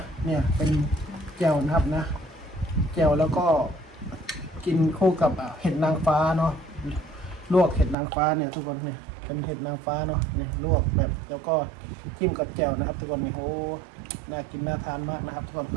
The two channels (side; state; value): left; drops out; at 8.0 s